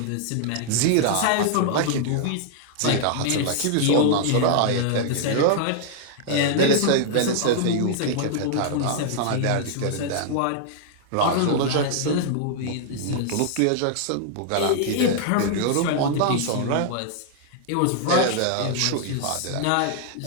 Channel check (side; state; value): both; different; correlation -0.01